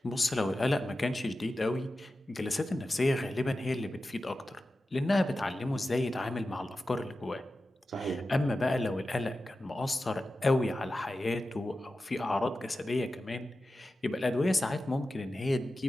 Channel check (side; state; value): both; normal; correlation 0.93